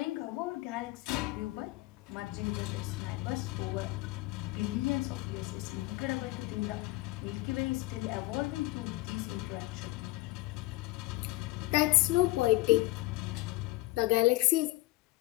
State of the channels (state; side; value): quieter; right; 20.0 dB